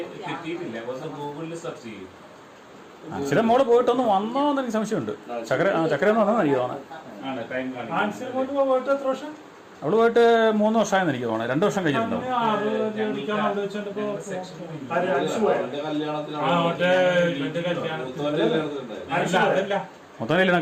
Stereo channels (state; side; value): identical; both; correlation 1.00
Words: കിട്ടിയിട്ടില്ല. ഒന്ന് ഗൂഗിളിൽ സെർച്ച് ചെയ്യും. ആൻസിയുടെ മോള് പോയിട്ടൊന്ന് വന്നോന്ന് എനിക്ക് സംശയമുണ്ട്. ചക്കര എന്ന് പറഞ്ഞാൽ എനിക്ക് തോന്നുന്നത്. ആണ് ടൈം കാണും. ആൻസർ കൊണ്ട് പോയിട്ട് എത്ര വർഷം? അവള് പോയിട്ട് 3 വർഷമായെന്ന് എനിക്ക് തോന്നുന്നത്. 2 വർഷം കഴിഞ്ഞിട്ടുണ്ടോ? ആര് ആൻസർ പോയോ? അവന്റെ കല്യാണത്തിനാണ്. ആ, മറ്റേ ഇവന്റെ കല്യാണത്തിന്. മൂത്തോന്റെ കല്യാണത്തിനുണ്ടായിരുന്നു. അല്ല, അതല്ല. മൊത്തം കല്യാണം